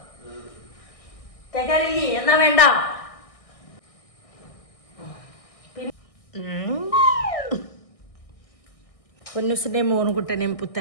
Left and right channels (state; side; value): late; right; 1.6 ms